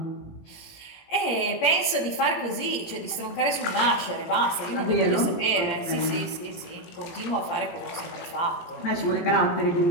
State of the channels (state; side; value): late; right; 17 ms